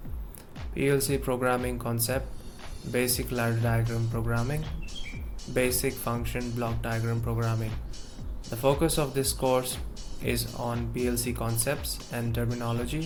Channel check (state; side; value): identical; both; correlation 1.00